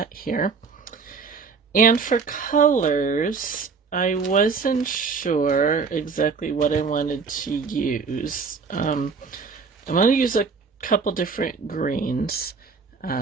here. And for colors, I wasn't sure exactly what I wanted to use. I'm going to use a couple different greens.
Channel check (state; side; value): quieter; left; 5.1 dB